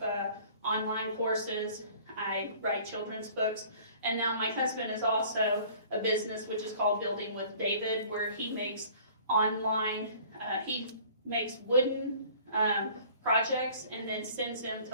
online courses. I write children's books. And now my husband is also a business which is called Building with David, where he makes online, he makes wooden projects and then sends them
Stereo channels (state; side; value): inverted; both; correlation -0.50